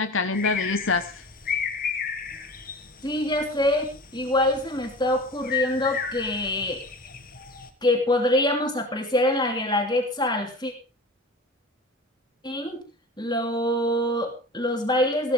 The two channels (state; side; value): normal; both; correlation 0.36